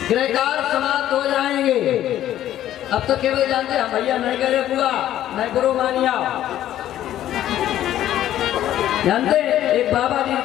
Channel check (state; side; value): quieter; right; 12.3 dB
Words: गृहकार समाप्त हो जाएंगे। अब तो केवल जानते हैं भैया नहीं करे बुआ नहीं बुरो मानिया। जानते एक बाबा जी